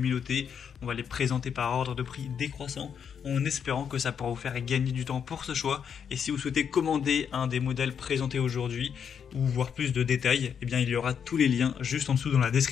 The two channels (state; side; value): quieter; right; 7.5 dB